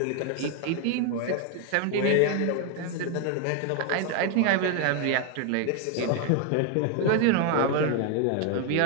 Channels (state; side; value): different; both; correlation 0.01